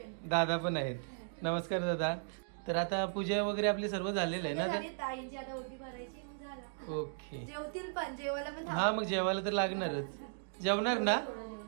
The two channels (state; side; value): silent; left; digital silence